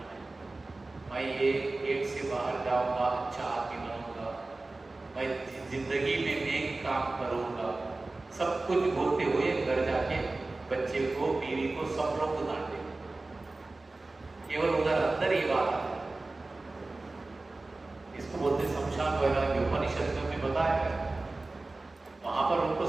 मैं ये गेट से बाहर जाऊंगा, अच्छा आदमी बनूंगा, मैं जिंदगी में नेक काम करूंगा। सब कुछ बोलते हुए घर जाके बच्चे को, बीवी को, सब लोग को डांटे। केवल उधर अंदर ही बात है। इसको बोलते शमशान वैराग्य। उपनिषद में बताया है, वहां पर उनको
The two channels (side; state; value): left; quieter; 3.2 dB